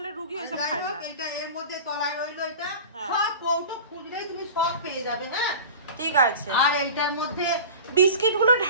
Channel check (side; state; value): both; inverted; correlation -0.35